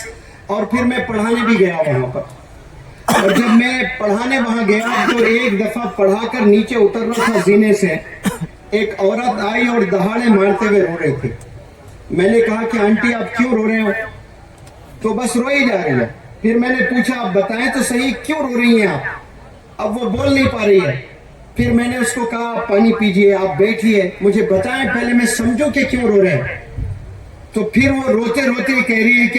और फिर मैं पढ़ाने भी गया वहाँ पर। और जब मैं पढ़ाने वहाँ गया तो एक दफ़ा पढ़ाकर नीचे उतर रहा था जीने से, ایک عورت آئی اور دہاڑے مارتے ہوئے رو رہی تھی. میں نے کہا کہ آنٹی آپ کیوں رو رہے ہو؟ تو بس روئی جا رہی ہے. پھر میں نے پوچھا آپ بتائیں تو صحیح کیوں رو رہی ہیں آپ؟ اب وہ بول نہیں پا رہی ہے. پھر میں نے اس کو کہا آپ پانی پیجئے، آپ بیٹھیے، مجھے بتائیں پہلے میں سمجھوں کہ کیوں رو رہے ہیں. تو پھر وہ روتے روتے کہہ رہی ہے کہ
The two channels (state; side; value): identical; both; correlation 1.00